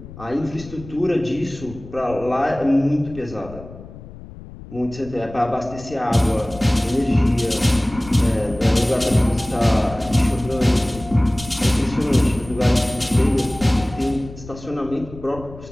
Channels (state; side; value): noise; left; rumble, 16 dB below the sound